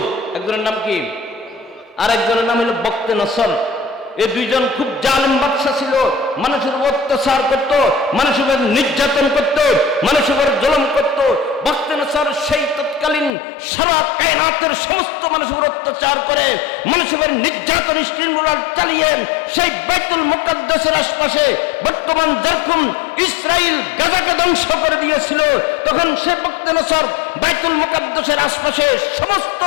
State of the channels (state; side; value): drops out; right; at 13.3 s